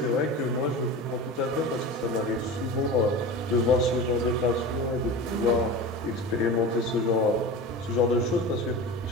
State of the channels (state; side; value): normal; both; correlation 0.30